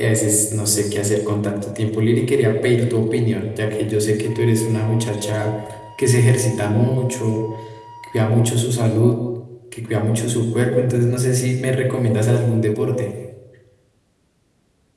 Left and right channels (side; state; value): both; identical; correlation 1.00